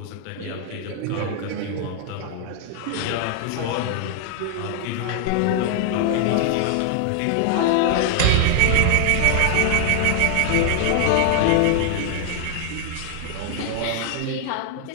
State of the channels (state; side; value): different; both; correlation 0.00